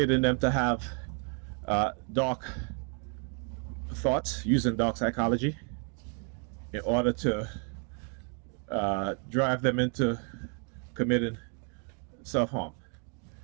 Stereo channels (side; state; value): left; quieter; 39.9 dB